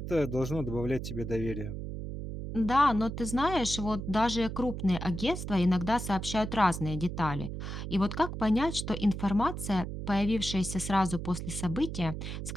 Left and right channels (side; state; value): right; noise; hum, 6 dB below the sound